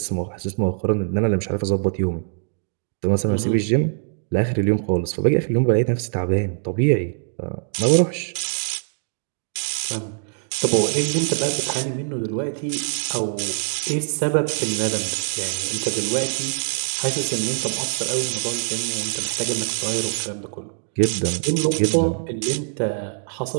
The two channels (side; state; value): left; silent; digital silence